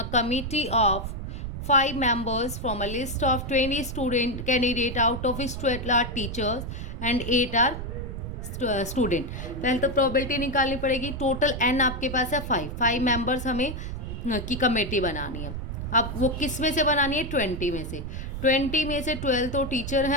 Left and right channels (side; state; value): right; noise; rumble, 6 dB below the sound